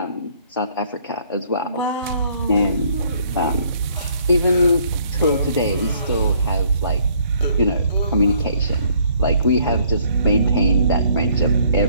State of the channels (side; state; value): both; inverted; correlation -0.63